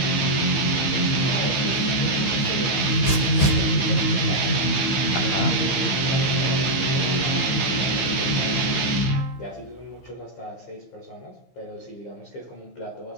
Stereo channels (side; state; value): right; late; 15 ms